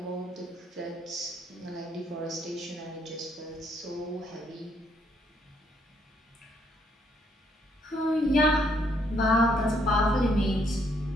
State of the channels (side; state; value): both; normal; correlation 0.70